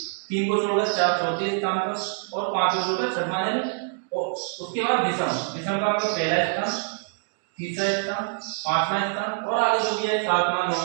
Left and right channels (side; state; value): left; silent; digital silence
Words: 3 को छोड़कर 4 चौथे स्थान पर, और 5 को छोड़कर छठवां है, और उसके बाद विषम। विषम का मतलब पहला स्थान, तीसरा स्थान, पांचवा स्थान, और आगे जो भी है 7वां